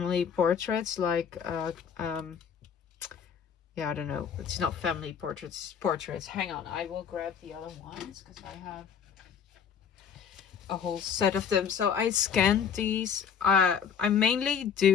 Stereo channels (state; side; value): quieter; right; 7.5 dB